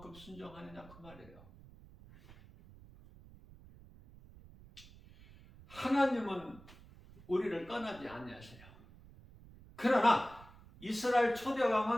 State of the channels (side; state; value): right; noise; rumble, 21 dB below the sound